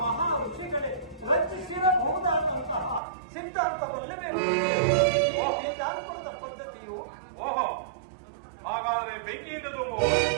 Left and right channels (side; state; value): left; drops out; at 3.0 s